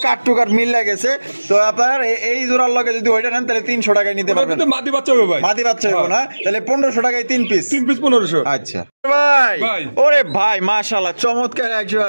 কাট টু কাট মিল লাগেছে তো আপনার এই জোড়ার লগে যদি ওইটা নেন তাহলে 300 টাকায় নিতে পারবেন। মাদি বাচ্চা হবে ভাই। মাদি বাচ্চা হবে না? তাহলে 1500 টাকায় 3 পিস 1500। আচ্ছা ভাই। ওরে ভাই মাশাআল্লাহ চমৎকার একজোড়া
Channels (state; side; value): inverted; both; correlation -1.00